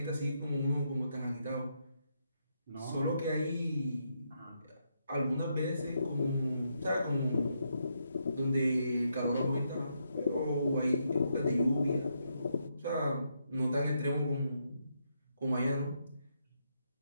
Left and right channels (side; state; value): both; inverted; correlation -0.79